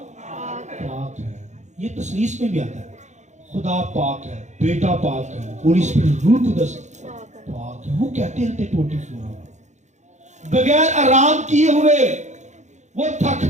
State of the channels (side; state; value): left; late; 0.34 ms